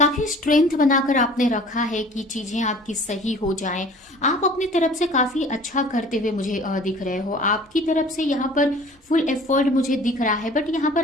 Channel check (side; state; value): both; normal; correlation 0.47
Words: स्ट्रेंथ बनाकर आपने रखा है कि चीजें आपकी सही हो जाएं। आप अपनी तरफ से काफी अच्छा करते हुए मुझे दिख रहे हो। आपकी तरफ से यहाँ पर फुल एफर्ट मुझे दिख रहा है, बट यहाँ पर